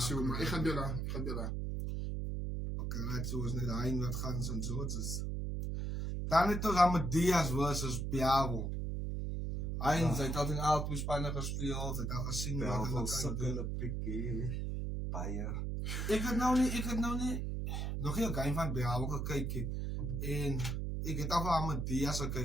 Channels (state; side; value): noise; right; hum, 1 dB below the sound